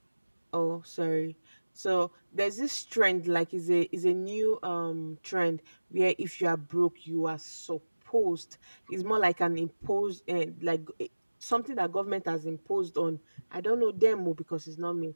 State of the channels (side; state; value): both; inverted; correlation -1.00